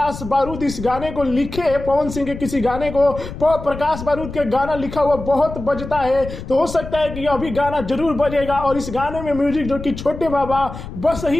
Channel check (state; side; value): noise; left; rumble, 10 dB below the sound